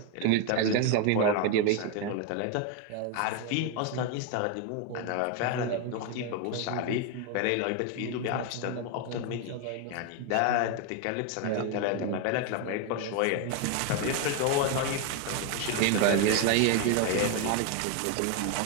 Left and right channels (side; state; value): both; different; correlation 0.01